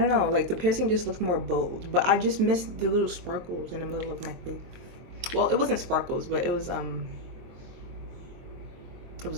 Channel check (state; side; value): late; left; 23 ms